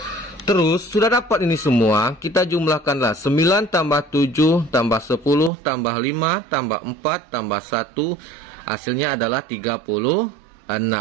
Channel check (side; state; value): left; drops out; at 5.5 s